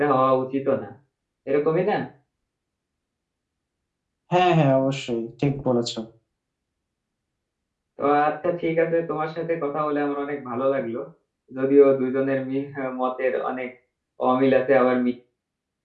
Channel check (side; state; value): both; identical; correlation 1.00